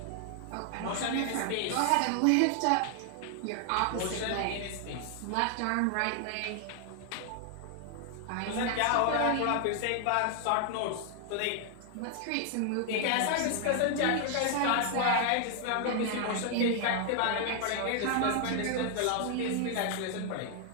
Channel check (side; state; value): both; different; correlation 0.00